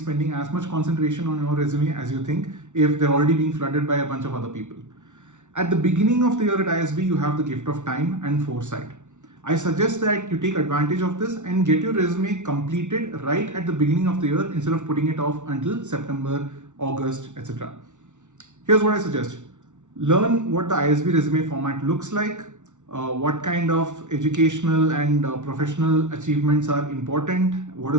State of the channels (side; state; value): left; late; 0.85 ms